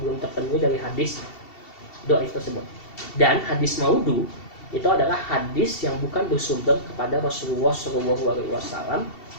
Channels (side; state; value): right; late; 2.7 ms